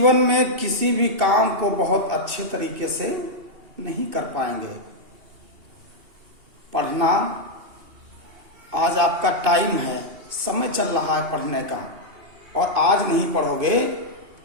में किसी भी काम को बहुत अच्छे तरीके से नहीं कर पाएंगे। पढ़ना आज आपका टाइम है, समय चल रहा है पढ़ने का, और आज नहीं पढ़ोगे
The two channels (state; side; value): late; left; 2.8 ms